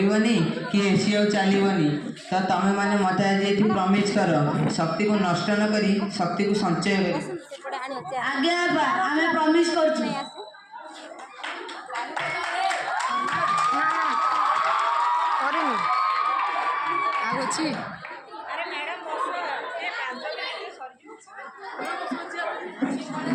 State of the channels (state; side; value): identical; both; correlation 1.00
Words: कि एसी आ चलीबनी तो तमे माने मते आज एठी प्रॉमिस कर शक्ति को नष्ट न करी शक्ति को संचय करी। आगे आबा हमें प्रॉमिस करछु करेनी आगो छी अरे मैडम बस ए 5 मिनिट